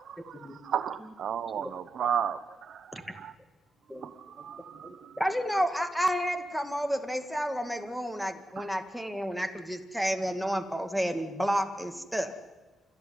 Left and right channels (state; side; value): normal; both; correlation 0.89